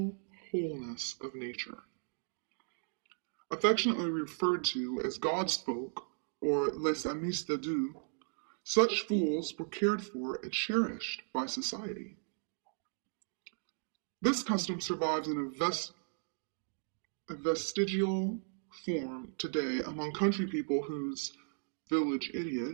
wholeness of nature. Affectionately referred to as God's folk, or les amis de Dieu, such fools were cared for and cherished by society. This custom survives in a vestigial form today among country people whose village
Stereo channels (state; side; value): silent; left; digital silence